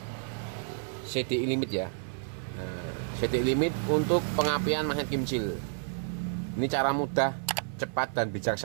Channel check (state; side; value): silent; left; 58 dB below the other